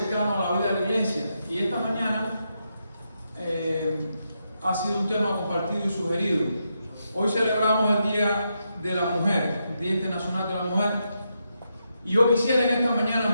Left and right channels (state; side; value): inverted; both; correlation -0.83